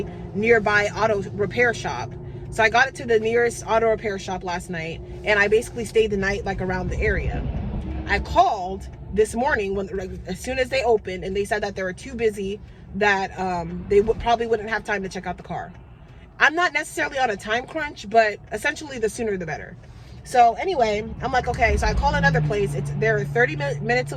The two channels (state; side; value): identical; both; correlation 1.00